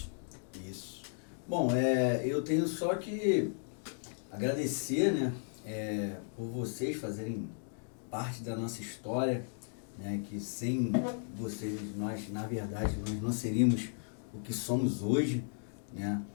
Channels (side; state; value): right; silent; digital silence